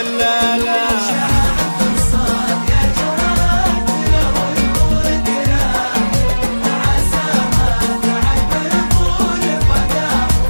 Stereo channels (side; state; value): both; inverted; correlation -1.00